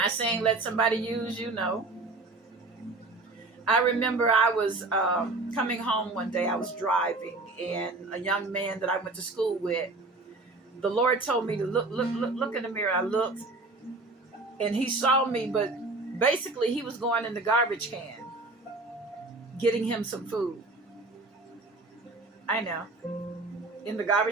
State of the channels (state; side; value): quieter; left; 3.3 dB